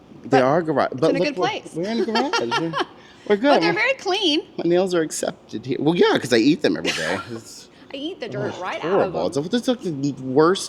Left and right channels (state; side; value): identical; both; correlation 1.00